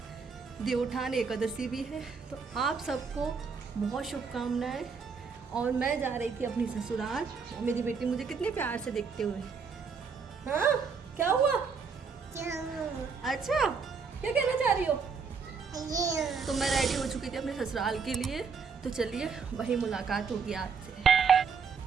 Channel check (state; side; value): quieter; left; 5.5 dB